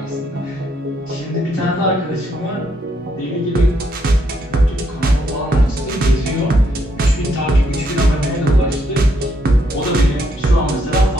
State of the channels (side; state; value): both; normal; correlation 0.74